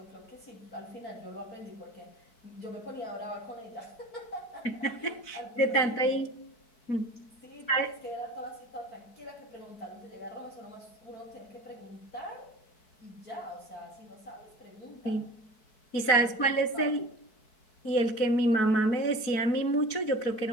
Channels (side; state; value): right; late; 4.6 ms